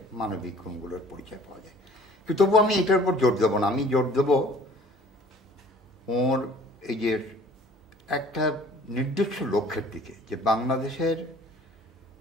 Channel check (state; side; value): normal; both; correlation 0.52